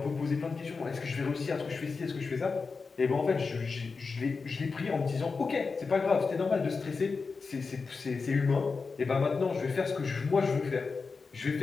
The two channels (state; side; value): quieter; right; 4.6 dB